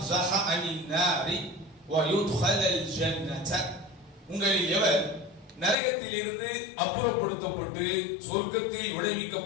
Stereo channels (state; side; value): drops out; right; at 5.8 s